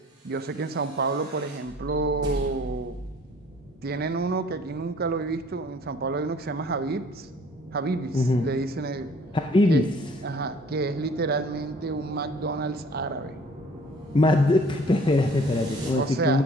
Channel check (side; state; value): both; normal; correlation 0.54